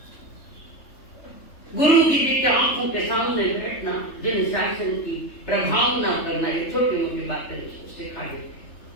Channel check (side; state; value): right; late; 3.3 ms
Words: गुरु जी के आंखों के सामने बैठना, जिन शासन की प्रभावना करना, ये छोटी मोटी बातें सिखा देते।